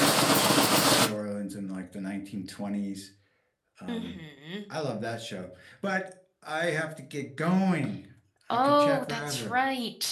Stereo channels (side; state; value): both; identical; correlation 1.00